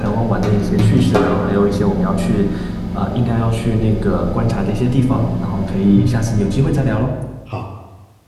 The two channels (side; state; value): both; identical; correlation 1.00